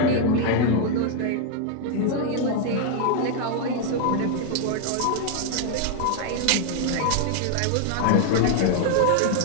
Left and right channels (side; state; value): both; different; correlation 0.00